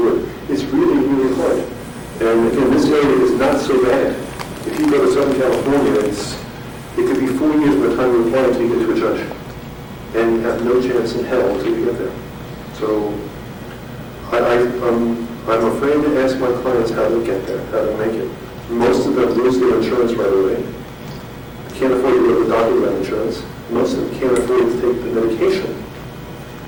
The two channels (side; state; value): both; identical; correlation 1.00